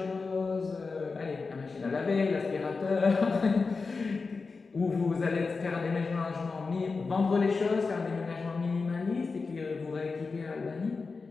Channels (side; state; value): right; quieter; 4.4 dB